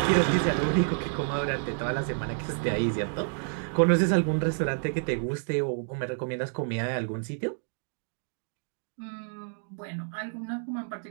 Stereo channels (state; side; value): silent; left; digital silence